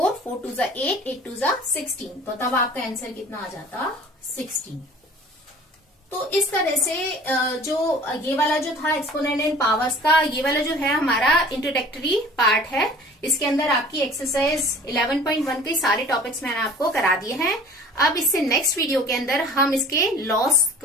4 2 = 8, 8 2 = 16, तो तब आपका आंसर कितना आ जाता, 16। तो इस तरह से जो ये वाला जो था एक्सपोनेंट एंड पावर्स का, ये वाला जो है हमारा इंट्रोडक्टरी पार्ट है। इसके अंदर आपकी एक्सरसाइज 11.1 के सारे टॉपिक्स मैंने आपको करा दिए हैं। अब इससे नेक्स्ट वीडियो के अंदर हम इसके लॉस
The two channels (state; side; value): normal; both; correlation 0.46